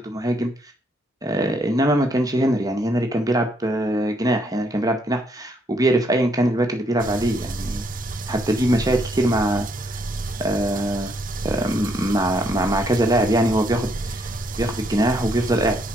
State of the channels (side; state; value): both; normal; correlation 0.72